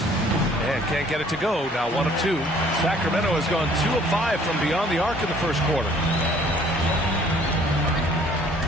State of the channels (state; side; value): normal; both; correlation 0.57